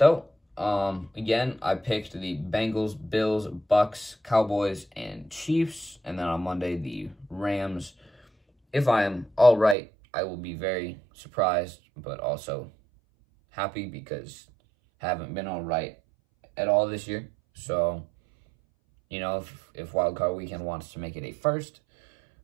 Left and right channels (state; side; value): drops out; left; at 9.8 s